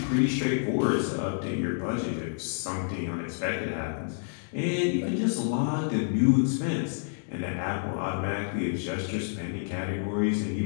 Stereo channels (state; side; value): silent; right; 59 dB below the other